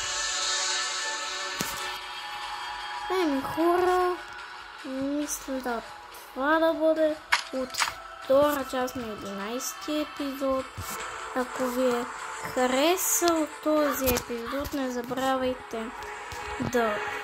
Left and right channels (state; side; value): identical; both; correlation 1.00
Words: Хора, мисля да това да бъде от втора част на 11-ти епизод. Ако ви е харесал този епизод, не забравяйте да